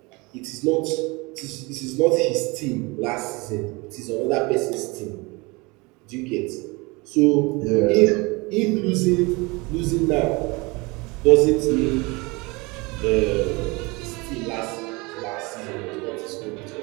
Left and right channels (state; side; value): quieter; left; 25.8 dB